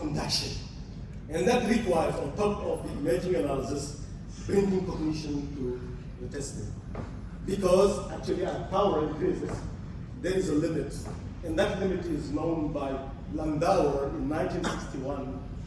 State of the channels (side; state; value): both; identical; correlation 1.00